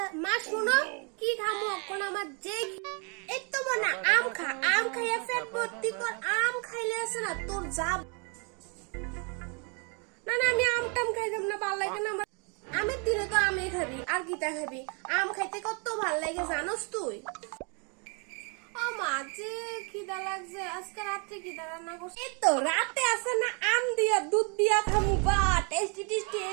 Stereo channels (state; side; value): quieter; left; 35.4 dB